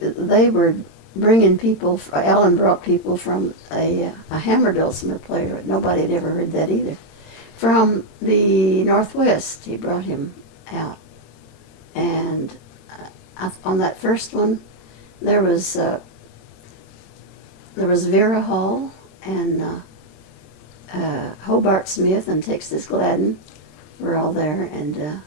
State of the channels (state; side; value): late; right; 26 ms